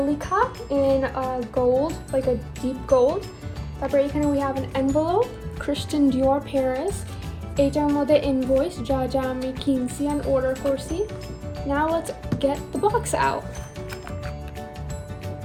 লেখা in gold like a deep gold তারপর এখানে we have an envelope Christian Dior Paris এটার মধ্যে ইনভয়েস যা যা আমি কিনছি and অর্ডার করছি now let's get the box out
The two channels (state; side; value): identical; both; correlation 1.00